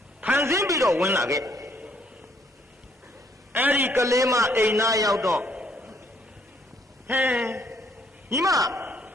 ဖန်ဆင်းပြီးတော့ဝင်လာခဲ့အဲ့ဒီကလေးမအိမ်သားရောက်တော့ဟဲညီမ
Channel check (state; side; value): normal; both; correlation 0.67